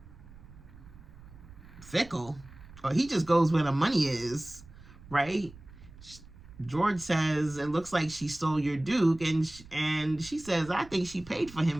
fickle. Or he just goes where the money is, right? George says, it looks like she stole your Duke. And she says, I think she paid for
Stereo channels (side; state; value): right; noise; rumble, 20 dB below the sound